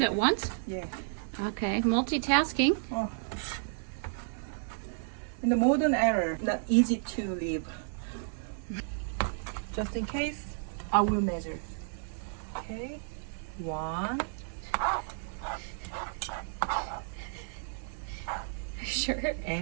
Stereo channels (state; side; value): silent; left; digital silence